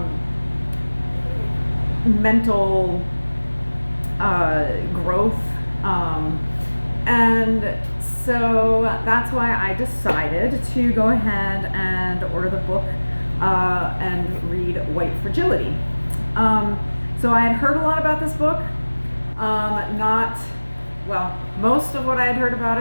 mental growth. And so that's why I decided to go ahead and order the book and read White Fragility. So I had heard a lot about this book. Most of what I had heard about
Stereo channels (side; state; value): both; inverted; correlation -1.00